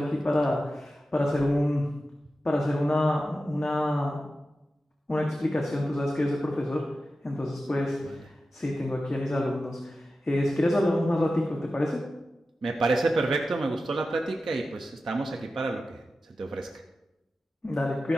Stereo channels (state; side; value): normal; both; correlation 0.93